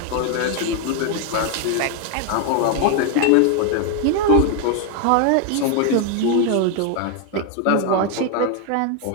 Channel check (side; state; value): both; different; correlation 0.01